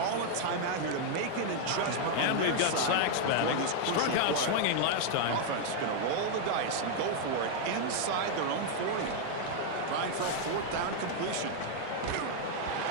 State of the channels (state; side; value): different; both; correlation 0.00